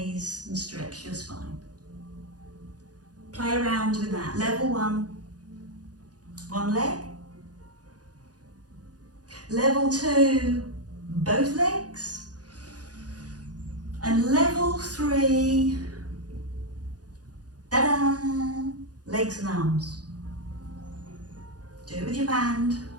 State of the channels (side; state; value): left; late; 0.68 ms